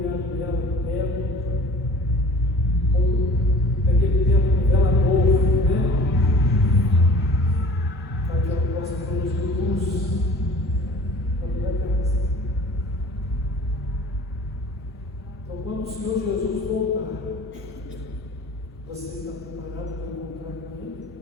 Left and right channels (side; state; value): both; normal; correlation 0.46